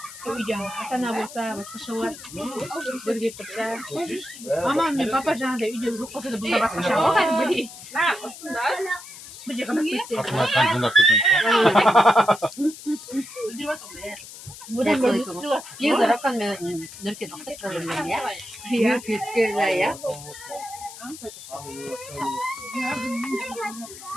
Koyacağım. Atana bulsa, başka var. Böyle yapacağım. Aman ne papa canı da video çok olsa da burada başka şey var. Hadi böyle. Ne yapıyorsun da? Bıcak ama bitti. Buradan böyle tutuyorlar. Bir zarakkan nörke naksak kalırlar ya. Bir kütküler ya.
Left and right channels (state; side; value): noise; left; hiss, 15 dB below the sound